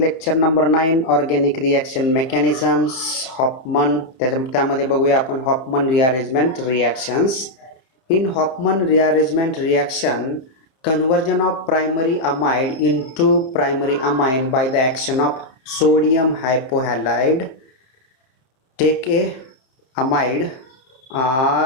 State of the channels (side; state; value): right; late; 30 ms